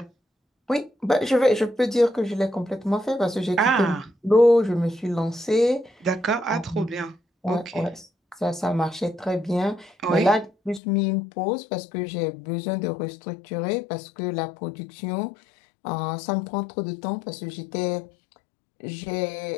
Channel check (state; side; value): drops out; right; at 10.8 s